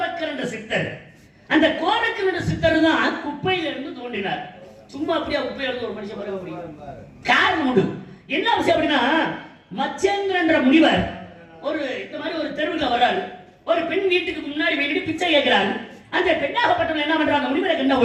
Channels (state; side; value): identical; both; correlation 1.00